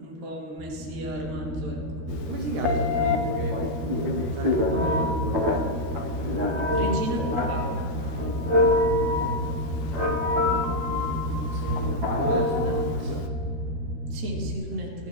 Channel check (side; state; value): left; late; 13 ms